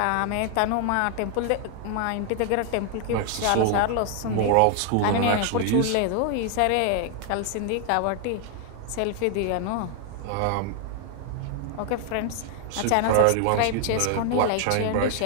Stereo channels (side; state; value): both; different; correlation 0.00